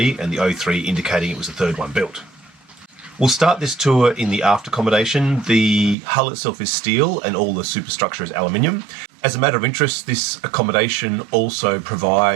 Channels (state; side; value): drops out; left; at 6.0 s